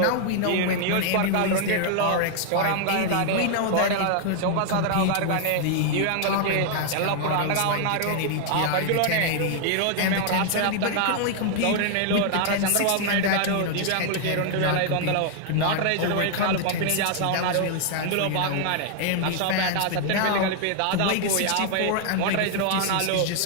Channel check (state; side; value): different; both; correlation 0.00